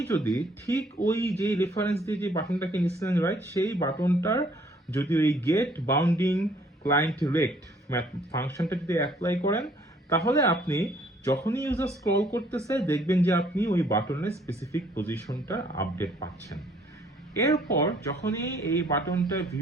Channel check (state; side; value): normal; both; correlation 0.62